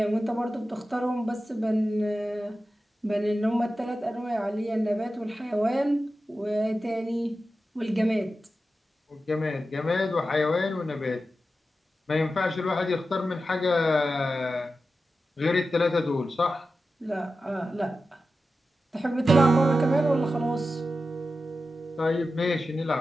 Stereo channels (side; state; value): both; normal; correlation 0.92